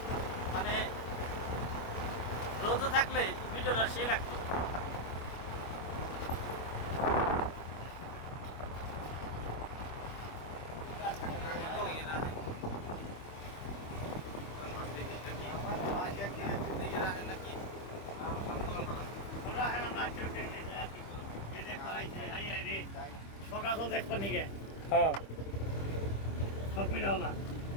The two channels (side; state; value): right; late; 25 ms